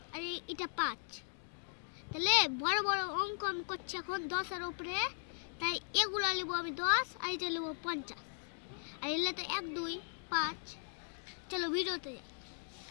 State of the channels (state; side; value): silent; right; digital silence